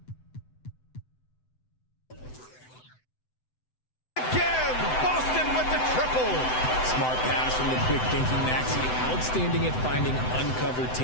again, Boston with the triple. Smart pass from the quick thinking Maxey. Outstanding at finding uncovered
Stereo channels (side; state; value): right; late; 7.9 ms